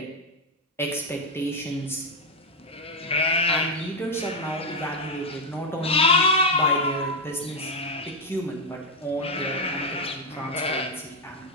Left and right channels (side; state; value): both; normal; correlation 0.02